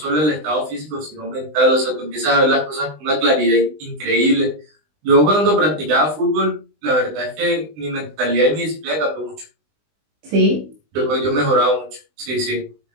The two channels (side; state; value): left; late; 20 ms